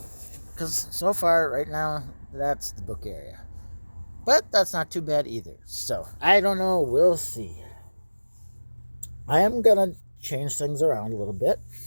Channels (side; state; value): both; inverted; correlation -1.00